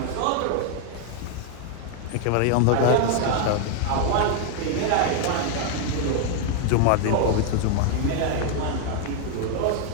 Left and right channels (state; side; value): different; both; correlation 0.00